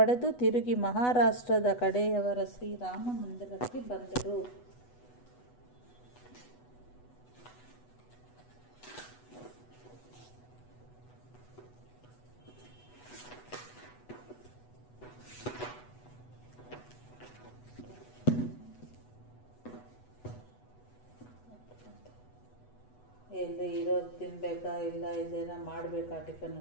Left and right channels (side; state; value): right; late; 8.1 ms